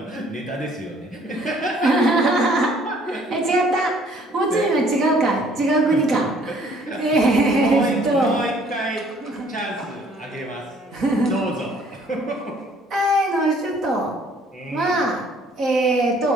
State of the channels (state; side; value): normal; both; correlation 0.59